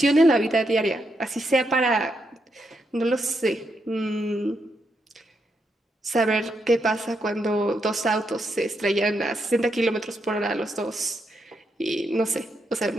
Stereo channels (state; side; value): normal; both; correlation 0.81